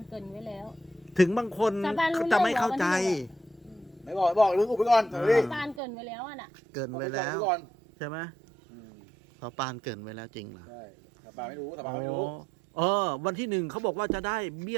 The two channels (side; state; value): left; drops out; at 5.8 s